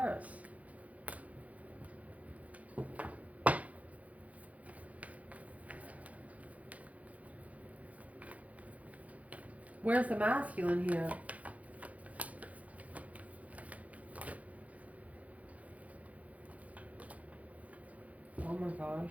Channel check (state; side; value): late; left; 0.069 ms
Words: Where's the masculine here? Oh my